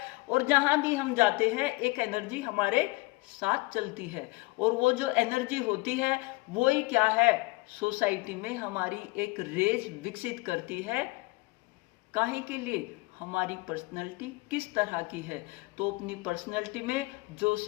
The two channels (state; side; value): quieter; right; 23.7 dB